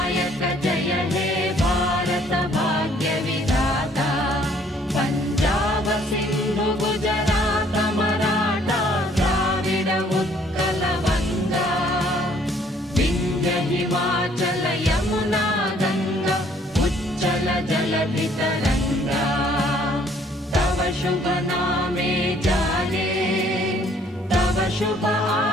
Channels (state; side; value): normal; both; correlation 0.61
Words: जय हे भारत भाग्य विधाता पंजाब सिंधु गुजरात मराठा द्राविड उत्कल वंगा विंध्य हिमाचल यमुना गंगा उच्चल जलधि तरंगा तव शुभ नामे जागे तव शुभ